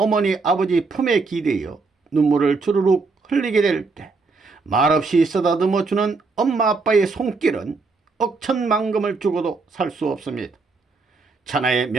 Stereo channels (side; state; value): left; quieter; 4.1 dB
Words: 아버지 품에 기대어 눈물을 주르륵 흘리게 될 때 말없이 쓰다듬어 주는 엄마 아빠의 손길은 억천만금을 주고도 살 수 없습니다. 천하의